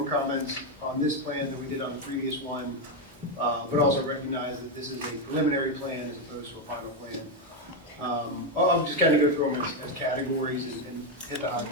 comments on this plan than we did on the previous one, but also recognize that this is a preliminary plan as opposed to a final plan. I'll just kind of go through them as categories and hit the high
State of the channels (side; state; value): both; normal; correlation 0.06